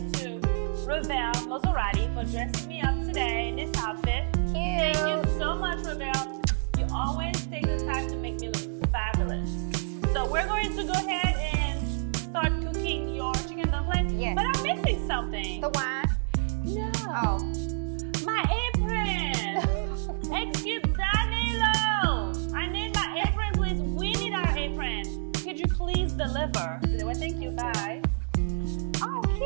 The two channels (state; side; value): silent; left; digital silence